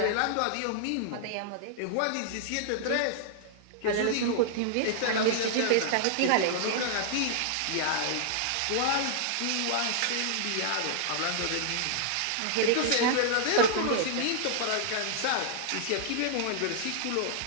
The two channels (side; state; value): both; different; correlation -0.01